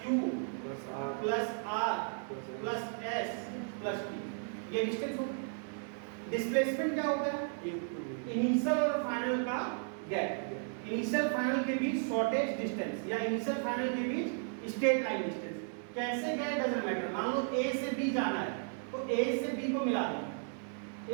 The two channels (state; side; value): silent; left; 55 dB below the other